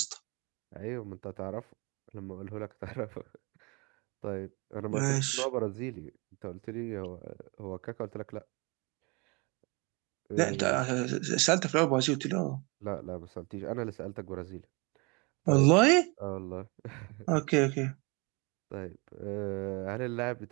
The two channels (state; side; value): quieter; left; 29.4 dB